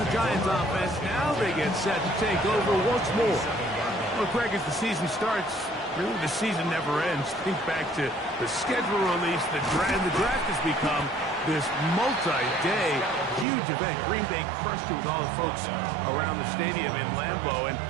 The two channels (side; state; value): left; drops out; at 13.5 s